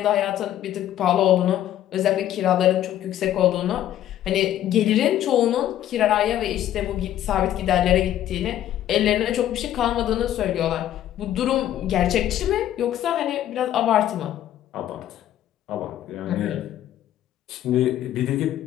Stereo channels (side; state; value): right; quieter; 12.1 dB